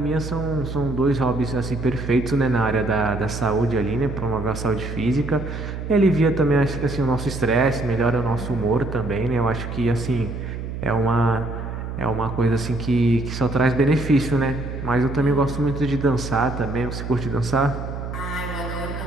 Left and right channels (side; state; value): right; noise; hum, 7 dB below the sound